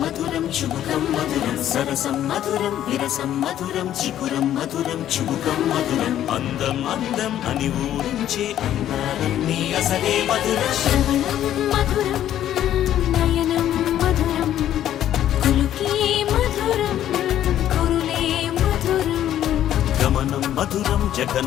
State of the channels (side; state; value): right; quieter; 11.5 dB